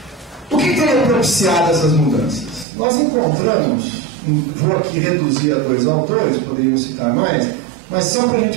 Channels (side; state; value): left; drops out; at 2.7 s